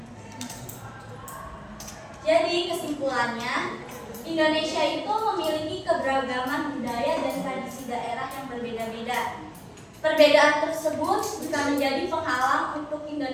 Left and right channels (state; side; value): identical; both; correlation 1.00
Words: Jadi kesimpulannya, Indonesia itu memiliki keberagaman budaya dan tradisi daerah yang berbeda-beda. Perbedaan tersebut bisa menjadi penghalang untuk